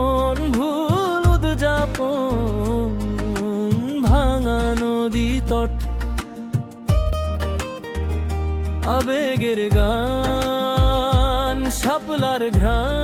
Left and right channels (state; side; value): identical; both; correlation 1.00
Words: ভুল উদযাপন, ভাঙা নদী তট, আবেগের গান, শাপলার